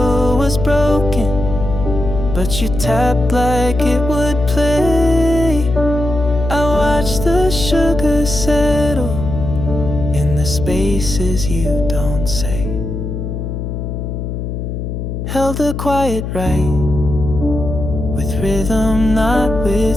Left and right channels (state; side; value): noise; left; hum, 5 dB below the sound